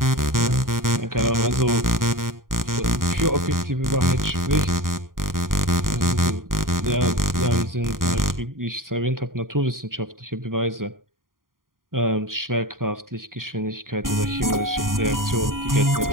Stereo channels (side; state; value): left; late; 0.91 ms